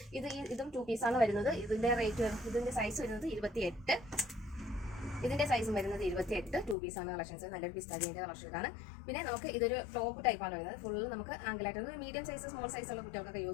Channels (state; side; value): drops out; right; at 6.8 s